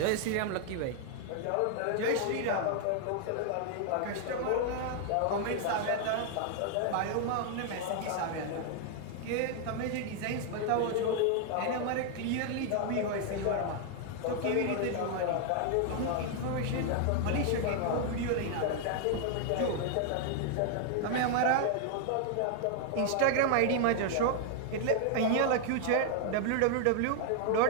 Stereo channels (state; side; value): different; both; correlation 0.00